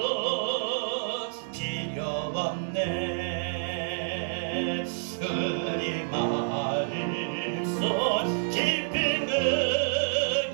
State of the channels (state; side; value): silent; left; digital silence